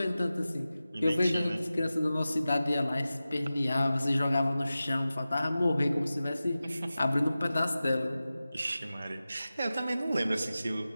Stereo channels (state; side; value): inverted; both; correlation -0.95